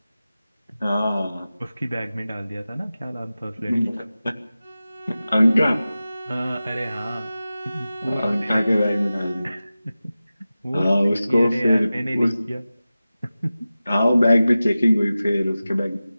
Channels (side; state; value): both; inverted; correlation -0.95